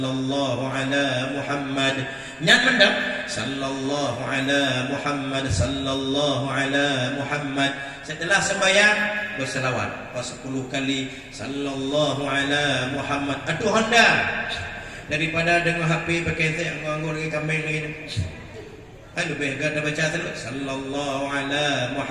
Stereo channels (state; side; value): identical; both; correlation 1.00